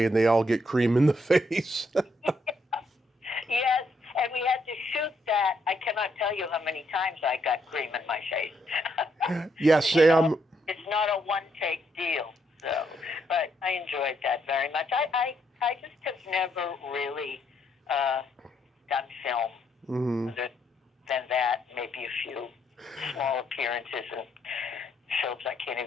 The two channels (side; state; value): both; normal; correlation 0.74